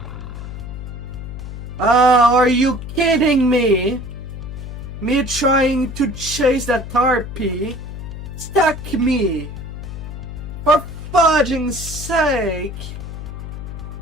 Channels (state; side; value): noise; left; hum, 9 dB below the sound